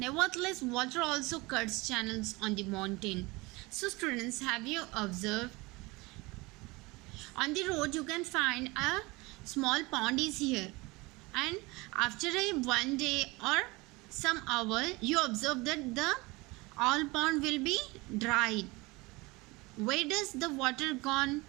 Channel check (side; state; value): left; quieter; 23.7 dB